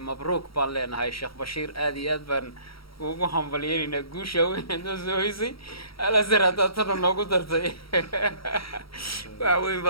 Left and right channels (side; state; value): right; late; 0.75 ms